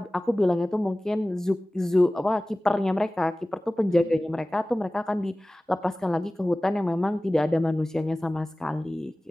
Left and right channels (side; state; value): both; normal; correlation 0.97